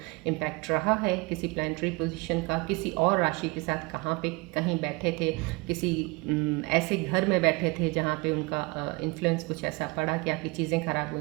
इम्पैक्ट रहा है, किसी प्लानिटरी पोजीशन का, किसी और राशि के साथ कहाँ पे कहीं बैठे थे, किसी ऐसे घर में बैठे थे जहाँ पे उनका इन्फ्लुएंस कुछ ऐसा पड़ा कि आपकी चीज़ें खराब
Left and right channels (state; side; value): quieter; left; 26.1 dB